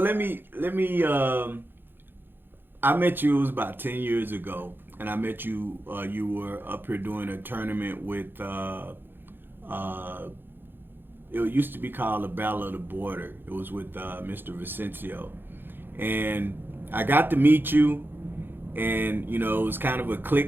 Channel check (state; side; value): late; left; 0.099 ms